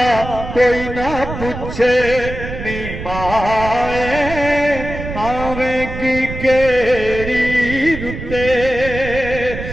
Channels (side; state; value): right; noise; rumble, 8 dB below the sound